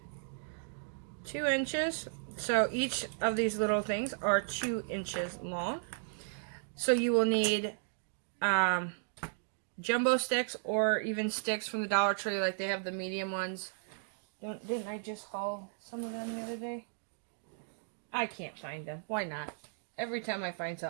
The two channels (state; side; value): silent; left; digital silence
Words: 2 inches. So each of these little things are 2 inches long. So you will need jumbo sticks or even sticks from the Dollar Tree, like they have the medium ones. Didn't I just haul some of them the other day? I can't find them. Why not? Every time I find